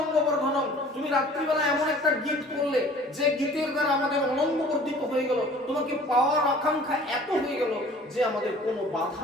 বর্ধনম, তুমি রাত্রিবেলা এমন একটা গীত করলে যে গীতের দ্বারা আমাদের অনঙ্গ বর্ধিত হয়ে গেল, তোমাকে পাওয়ার আকাঙ্ক্ষা এত হয়ে গেল যে আমাদের কোনো বাধা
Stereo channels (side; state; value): both; normal; correlation 0.49